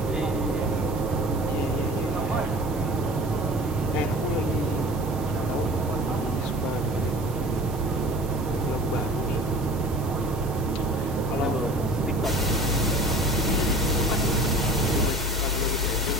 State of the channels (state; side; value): normal; both; correlation 0.42